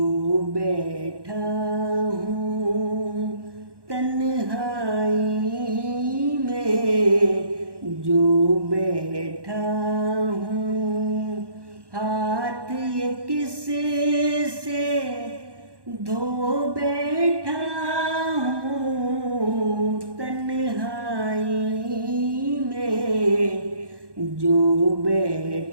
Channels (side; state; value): left; late; 1.1 ms